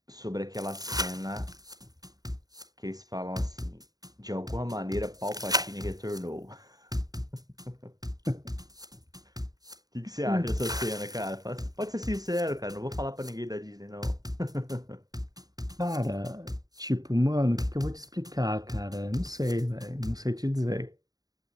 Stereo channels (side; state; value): left; late; 0.18 ms